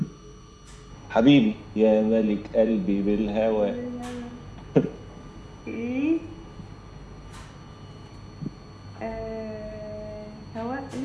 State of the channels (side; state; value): both; identical; correlation 1.00